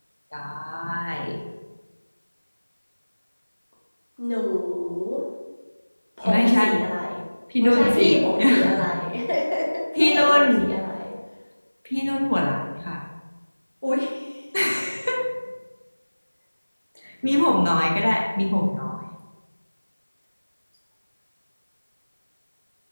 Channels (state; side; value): inverted; both; correlation -1.00